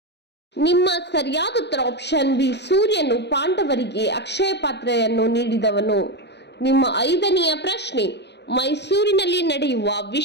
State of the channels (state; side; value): late; right; 0.50 ms